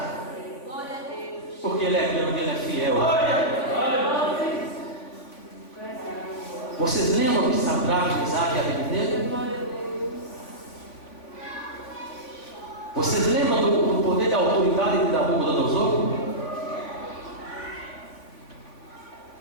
glória a Deus. Porque ele é grande, ele é fiel. Vocês lembram de Sadraque, Mesaque e Abednego? Vocês lembram do poder e da autoridade de Nabucodonosor?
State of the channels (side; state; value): right; late; 3.5 ms